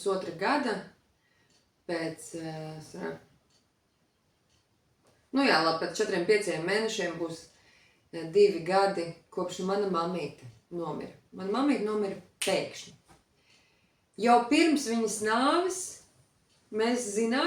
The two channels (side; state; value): both; identical; correlation 1.00